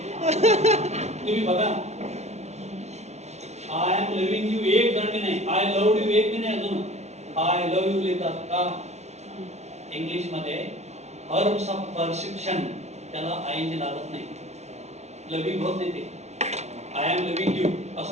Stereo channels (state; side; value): late; left; 0.32 ms